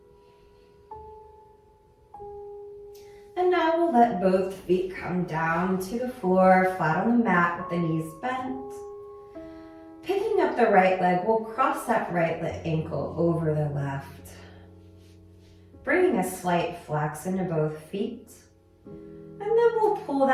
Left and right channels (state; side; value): identical; both; correlation 1.00